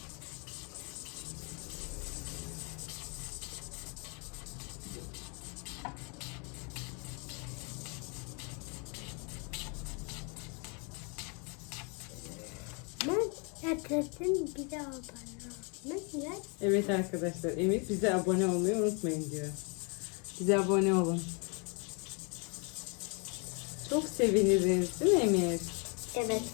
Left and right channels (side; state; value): right; quieter; 34.7 dB